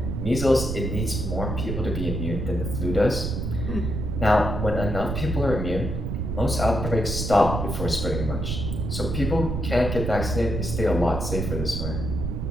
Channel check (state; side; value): noise; right; rumble, 2 dB below the sound